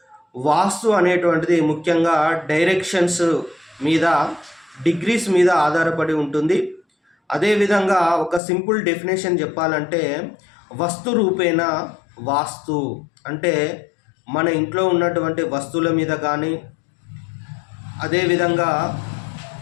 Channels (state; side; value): drops out; right; at 8.4 s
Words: వాస్తు అనేటువంటిది ముఖ్యంగా డైరెక్షన్స్ మీద, డిగ్రీస్ మీద ఆధారపడి ఉంటుంది. అదేవిధంగా ఒక సింపుల్ డెఫినేషన్ చెప్పాలంటే వస్తు రూపేణ వాస్తు అంటే మన ఇంట్లో ఉన్నటువంటి వస్తువుల మీద కానీ, అదేవిధంగా